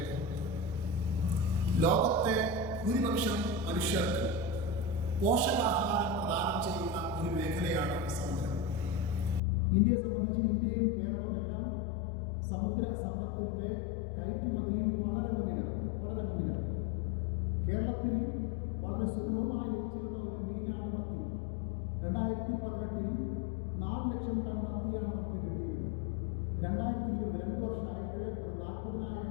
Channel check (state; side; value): drops out; right; at 9.4 s